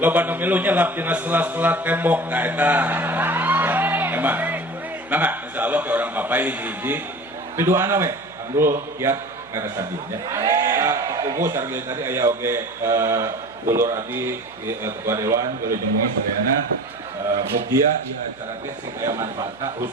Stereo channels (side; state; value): right; noise; hum, 26 dB below the sound